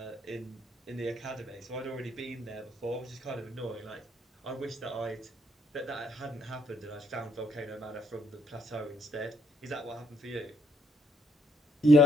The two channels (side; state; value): both; normal; correlation 0.71